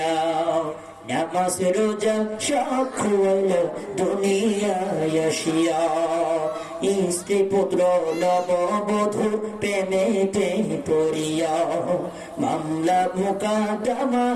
নামাজ রোজা সব খুয়াইল দুনিয়ায় আসিয়া। স্ত্রী পুত্র নববধূর প্রেমেতে পড়িয়া, মামলা মোকদ্দমা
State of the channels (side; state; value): both; identical; correlation 1.00